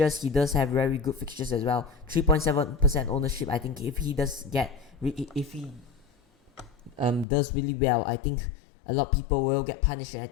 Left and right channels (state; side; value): drops out; right; at 7.2 s